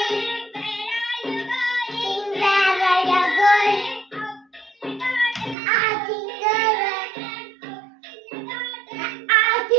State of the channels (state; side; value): drops out; left; at 5.6 s